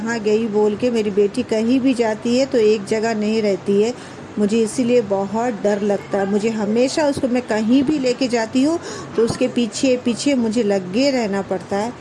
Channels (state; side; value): identical; both; correlation 1.00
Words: गई बोल के। मेरी बेटी कहीं भी जाती है तो एक जगह नहीं रहती है, मुझे इसीलिए बहुत डर लगता है। मुझे हमेशा उसको मैं कहीं भी लेके जाती हूँ तो उसके पीछे पीछे मुझे लगे रहना पड़ता है।